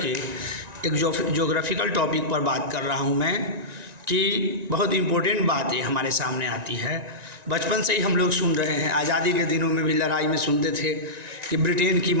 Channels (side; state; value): left; late; 1.9 ms